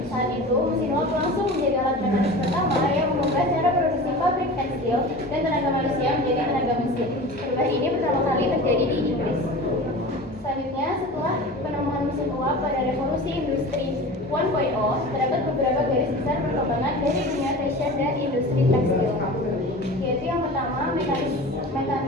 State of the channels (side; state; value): both; normal; correlation 0.35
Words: Saat itu mesin uap langsung menjadi alat mekanis pertama yang mengubah cara produksi pabrik tekstil dan tenaga manusia menjadi tenaga mesin. Perubahan ini pertama kali terjadi di Inggris. Selanjutnya, setelah penemuan mesin uap pada revolusi industri 1.0, terdapat beberapa garis besar perkembangan dari dunia fashion dan industri tekstil, yaitu yang pertama mekanisasi